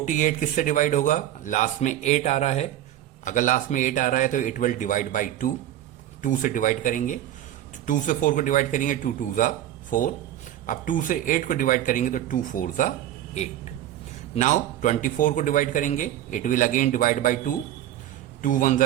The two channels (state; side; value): quieter; left; 12.5 dB